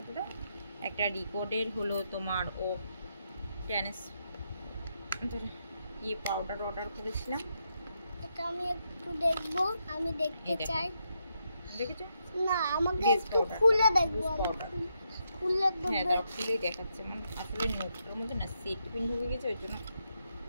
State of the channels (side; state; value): both; inverted; correlation -0.81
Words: দাও। একটা রিকর্ডের হলো তোমার পাউডার অর্ডার করেছিলাম। এটা আমি একটু দেখবো, আমি দেখতে চাই। দেখেছো না, আমাকে একটু খুলে দেখবো। হ্যাঁ, খুলেই দেখাচ্ছে। মানে আসলে নোটটার মধ্যে না সেট পিন ঢুকে গেছে, ওই জন্য